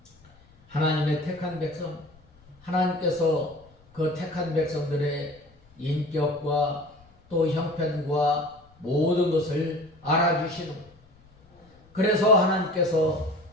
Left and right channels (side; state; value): left; noise; rumble, 28 dB below the sound